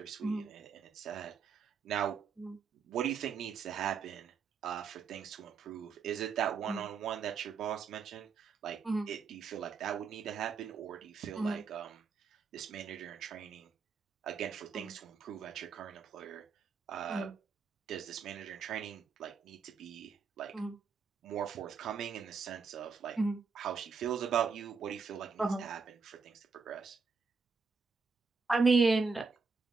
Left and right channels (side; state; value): left; quieter; 5.2 dB